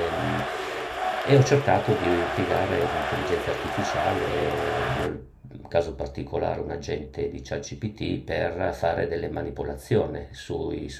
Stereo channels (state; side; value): identical; both; correlation 1.00